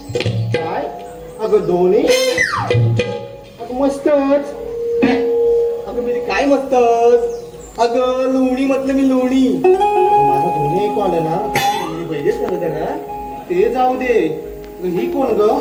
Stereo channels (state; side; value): identical; both; correlation 1.00